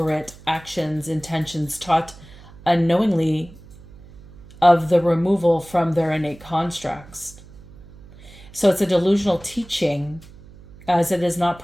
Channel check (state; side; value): noise; right; hum, 21 dB below the sound